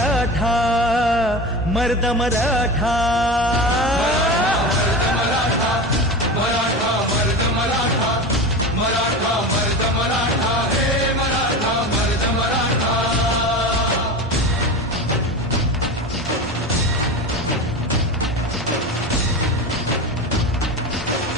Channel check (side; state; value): both; normal; correlation 0.27